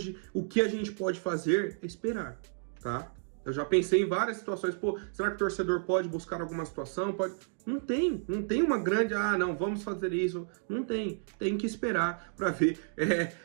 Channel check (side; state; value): left; silent; digital silence